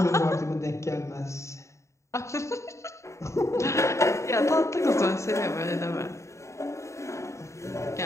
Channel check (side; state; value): right; late; 0.14 ms